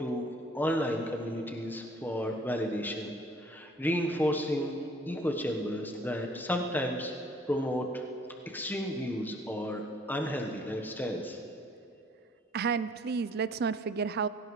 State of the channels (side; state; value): both; normal; correlation 0.57